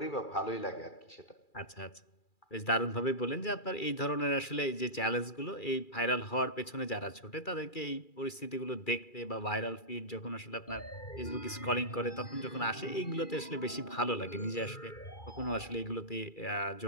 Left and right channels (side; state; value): right; late; 2.4 ms